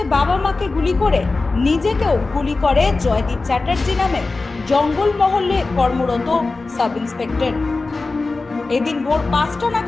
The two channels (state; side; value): quieter; right; 3.6 dB